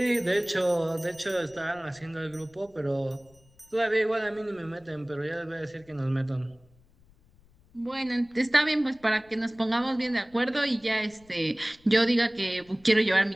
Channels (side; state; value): left; noise; rumble, 29 dB below the sound